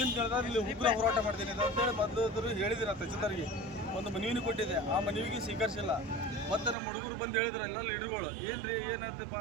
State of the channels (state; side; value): drops out; left; at 6.8 s